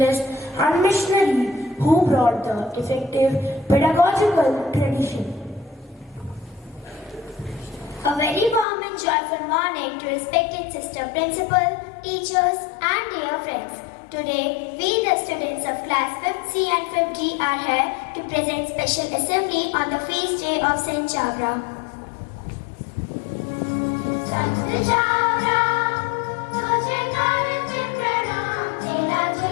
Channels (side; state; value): right; drops out; at 8.7 s